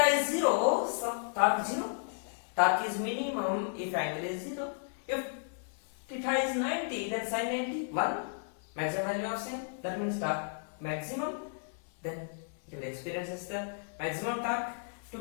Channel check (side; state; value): right; silent; 55 dB below the other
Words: is 0, so torque 0. Torque is minimum if angle is 0. If theta is 90, then sin 90, 1. Maximum value of sin. That means torque maximum. Then it will experience the maximum torque. To